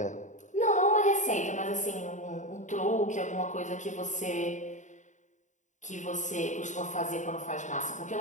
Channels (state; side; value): late; right; 0.36 ms